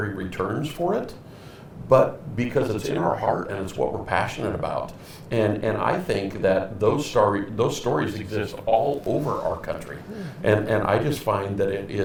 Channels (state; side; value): identical; both; correlation 1.00